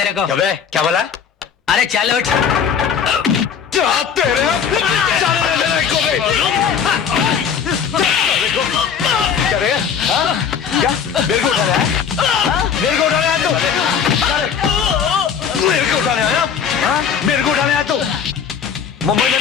को। क्या बोला? अरे चल उठ। तेरे जाने दे मेरे को भी। क्या रे? हाँ? क्या मेरे को उठाने आया? हाँ? मेरे को उठाने आया तू? मेरे को उठाने आया? हाँ? मेरे को उठाने आया तू? मुंबई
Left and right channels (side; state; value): right; quieter; 7.4 dB